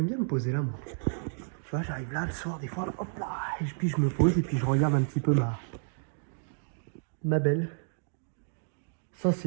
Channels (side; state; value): left; silent; digital silence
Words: bien me poser là, moi. Tu vois, j'arrive là le soir, des fois, hop là, et puis je me pose et puis je regarde un petit peu ma belle.